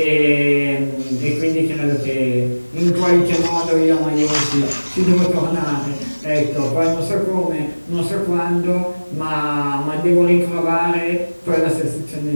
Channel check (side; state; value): both; inverted; correlation -1.00